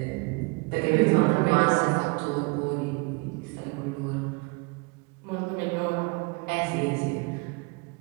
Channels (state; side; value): quieter; left; 29.3 dB